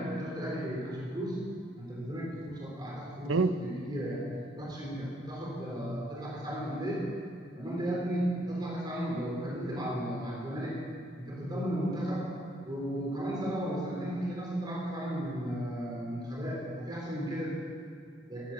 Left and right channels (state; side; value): normal; both; correlation 0.69